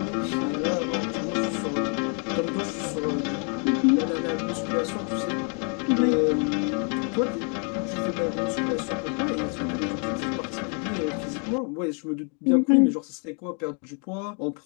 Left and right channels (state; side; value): quieter; right; 39.6 dB